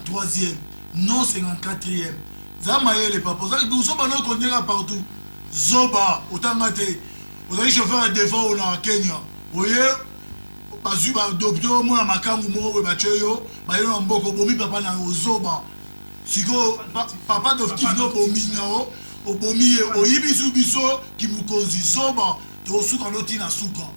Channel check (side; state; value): both; inverted; correlation -1.00